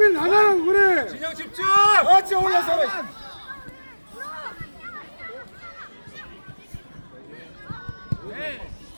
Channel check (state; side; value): inverted; both; correlation -1.00